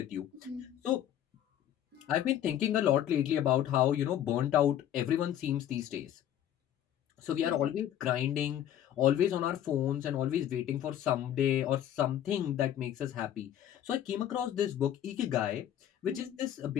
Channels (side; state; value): right; quieter; 11.0 dB